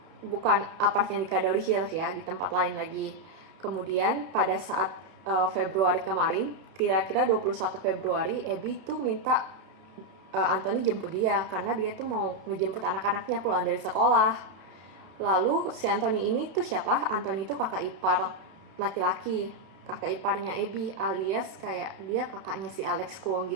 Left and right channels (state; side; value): late; left; 31 ms